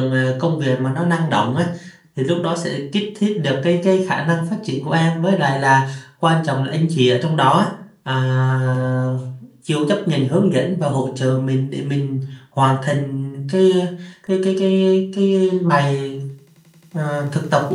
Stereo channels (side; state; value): both; identical; correlation 1.00